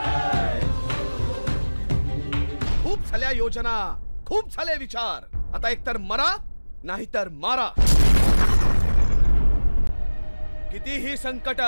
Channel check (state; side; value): inverted; both; correlation -1.00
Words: खूप झाल्या योजना, खूप झाले विचार, आता एकतर मरा नाहीतर मारा। कितीही संकट